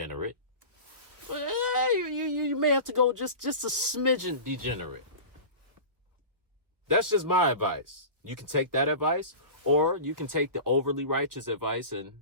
You may have to go just a smidgen degenerate. That's just my advice. You can take that advice, or you can take the overly righteous advice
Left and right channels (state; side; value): late; left; 1.1 ms